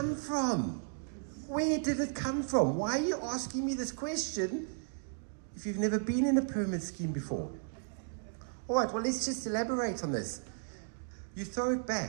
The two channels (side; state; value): left; silent; digital silence